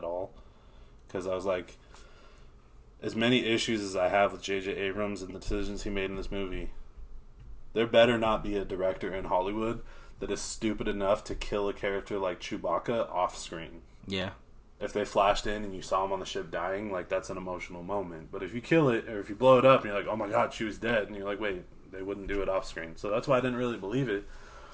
all. Because I was like, as many issues as I have with J.J. Abrams and the decisions he made in this movie, there better not be a director in Hollywood that is stupid enough to kill a character like Chewbacca off screen. Yeah. If they flashed in and you saw him on the ship dying, like, that's an emotional moment. But if you kill it, or if you blow it up, and you're like, oh my god, Chewie's dead, and you're like, wait, they wouldn't do it off screen. So that's why I didn't really believe it.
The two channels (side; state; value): both; identical; correlation 1.00